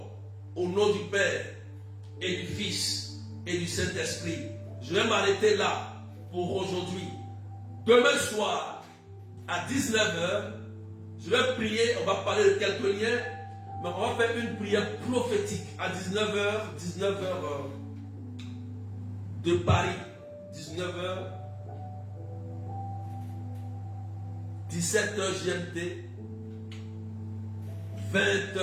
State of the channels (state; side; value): identical; both; correlation 1.00